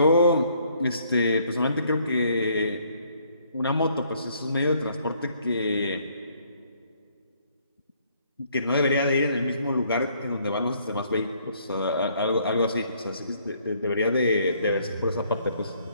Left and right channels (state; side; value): inverted; both; correlation -0.66